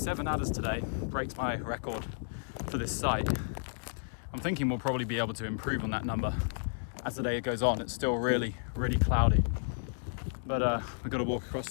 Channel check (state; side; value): silent; right; digital silence